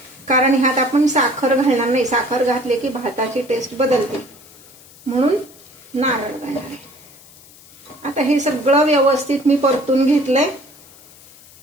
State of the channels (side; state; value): left; noise; hiss, 23 dB below the sound